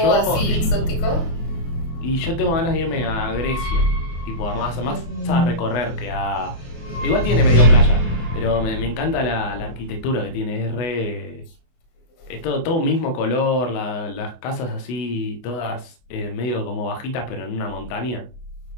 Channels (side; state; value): right; late; 24 ms